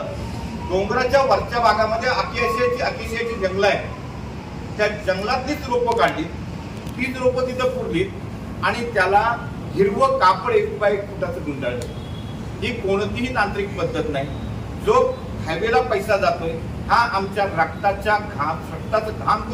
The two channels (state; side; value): identical; both; correlation 1.00